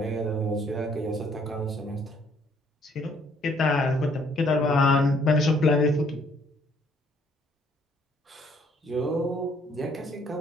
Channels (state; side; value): normal; both; correlation 0.64